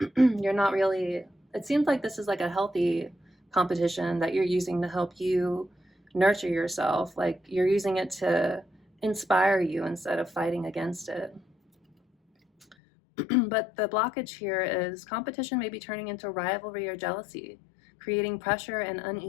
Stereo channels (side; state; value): right; drops out; at 12.8 s